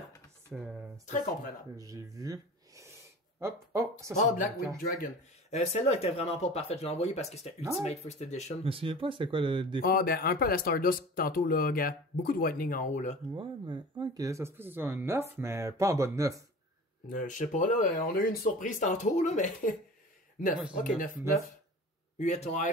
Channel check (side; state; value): both; normal; correlation 0.38